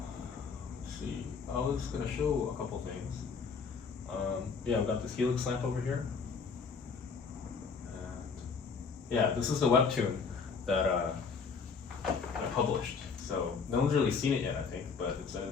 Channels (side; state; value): right; quieter; 5.4 dB